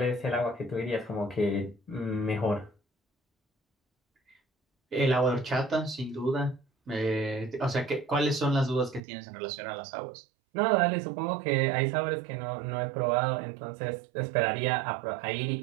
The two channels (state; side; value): drops out; left; at 9.0 s